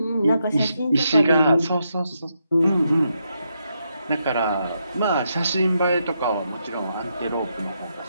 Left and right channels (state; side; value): inverted; both; correlation -0.81